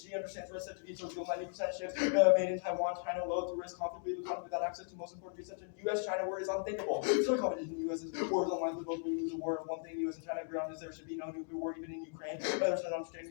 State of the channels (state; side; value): silent; right; 53 dB below the other